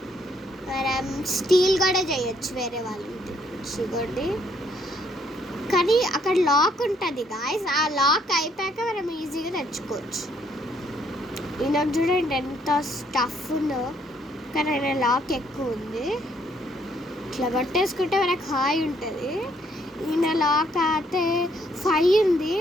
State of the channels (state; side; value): normal; both; correlation 0.68